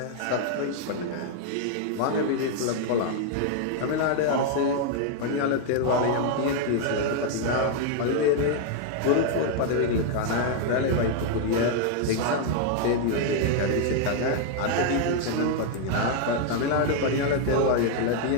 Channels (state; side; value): different; both; correlation 0.00